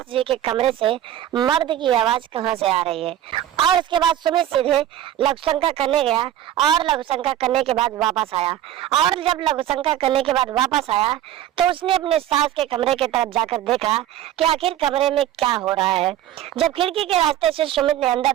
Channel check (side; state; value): left; quieter; 12.2 dB